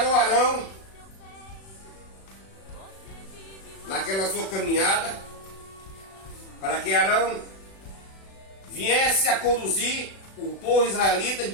Arão naquela sua caminhada, para que Arão viesse a conduzir o povo israelita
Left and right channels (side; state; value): right; late; 36 ms